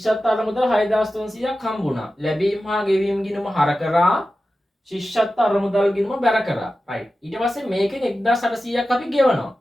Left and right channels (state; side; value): normal; both; correlation 0.94